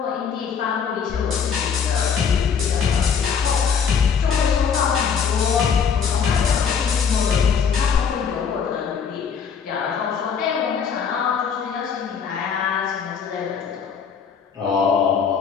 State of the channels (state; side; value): quieter; right; 6.7 dB